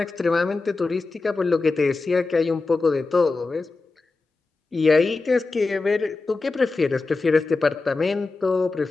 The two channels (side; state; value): right; quieter; 3.7 dB